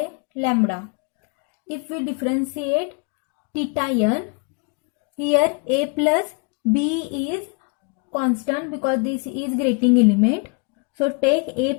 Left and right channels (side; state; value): right; quieter; 33.0 dB